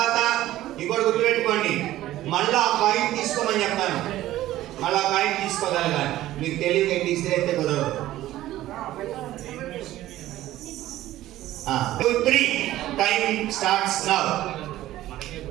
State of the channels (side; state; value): left; quieter; 14.7 dB